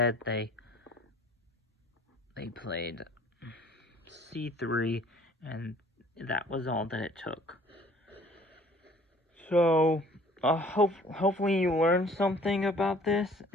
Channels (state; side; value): normal; both; correlation 0.53